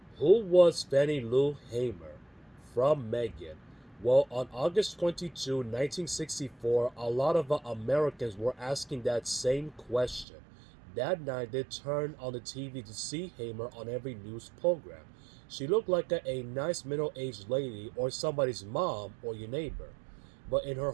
who was Fannie Lou Hamer? From Megan. Well, on August 22, 1964, a lot of Americans were asking that same question. That night, they turned on the TV to see Hamer on every news program. She looked like a nice middle aged lady or somebody's mom or your neighbor. But in her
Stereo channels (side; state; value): left; drops out; at 10.2 s